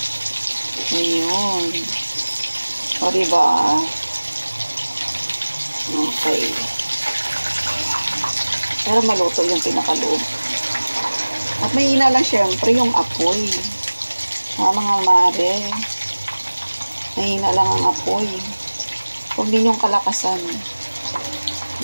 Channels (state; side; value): inverted; both; correlation -1.00